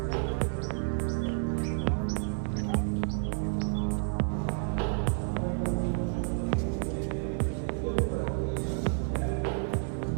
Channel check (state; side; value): silent; left; 58 dB below the other